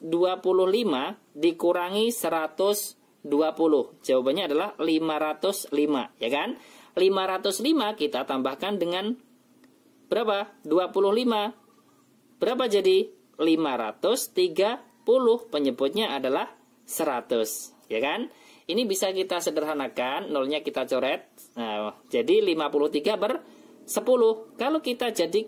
dikurangi 120. Jawabannya adalah 505, ya kan? 505 kita tambahkan dengan berapa? 25. Berapa jadi? 530. Penyebutnya adalah 100, ya kan? Ini bisa kita sederhanakan, nolnya kita coret. Nah, jadi 53 per 10. Kalau kita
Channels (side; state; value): both; identical; correlation 1.00